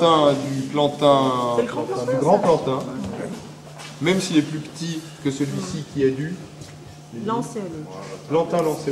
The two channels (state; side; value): identical; both; correlation 1.00